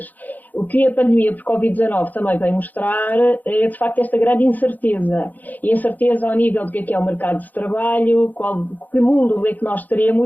O que a pandemia por Covid-19 também vem mostrar é, de facto, esta grande incerteza. E incerteza ao nível do que é o mercado de trabalho, que mundo é que nós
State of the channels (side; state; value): right; late; 0.082 ms